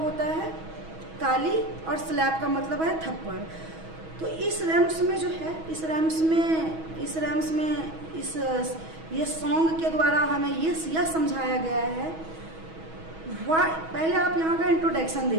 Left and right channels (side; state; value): left; late; 6.2 ms